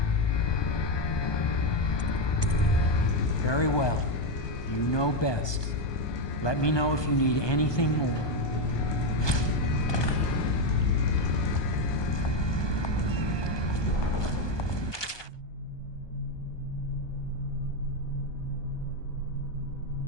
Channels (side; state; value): right; late; 1.2 ms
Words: Very well. You know best. Let me know if you need anything more.